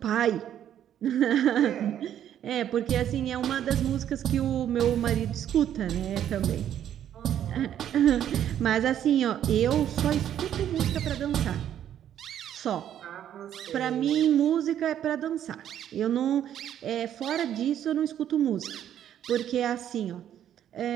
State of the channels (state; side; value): quieter; left; 10.4 dB